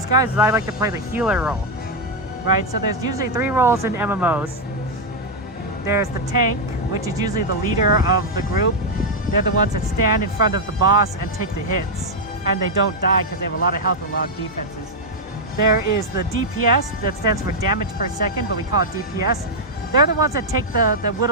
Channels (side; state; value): both; normal; correlation -0.01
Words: guys, is I like to play the healer role. Right? So there's usually 3 roles in MMOs. There's the tank, which is usually the leader of the group. They're the ones that stand in front of the boss and take the hits. And they don't die because they have a lot of health and a lot of defenses. There is the DPS, that stands for damage per second, but we call it DPS. They're the ones that take the